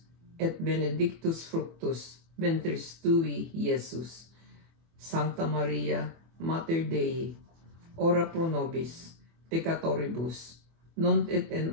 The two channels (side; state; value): left; late; 24 ms